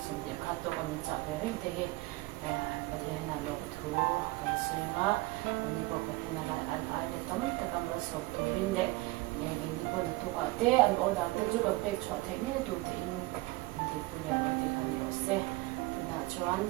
xong thì khát tôi cũng chào về hết thì có thể là lúc thu cái suy ngã mình có thể là anh ai để tóm tất cả mọi sự tôi bên đấy mình đi qua thu cả thế anh ở đó tôi chú cần phải cho thế này tôi thì thì bây giờ thì không hiểu sẽ thì là cho anh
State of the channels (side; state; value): left; quieter; 20.8 dB